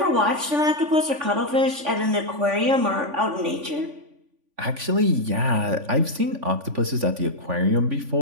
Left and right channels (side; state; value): left; late; 3.5 ms